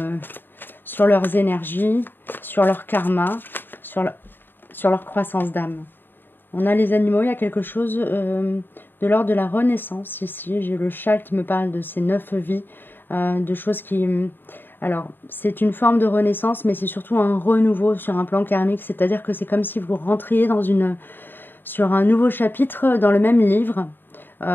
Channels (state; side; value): late; right; 0.095 ms